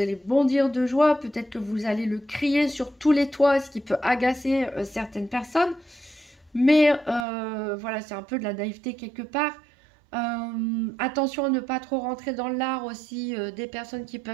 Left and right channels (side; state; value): left; drops out; at 7.2 s